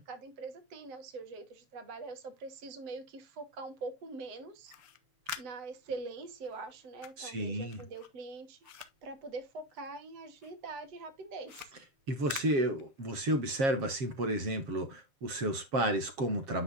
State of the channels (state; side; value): late; left; 7.4 ms